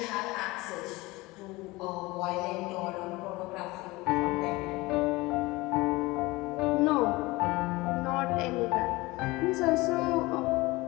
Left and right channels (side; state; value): right; quieter; 21.7 dB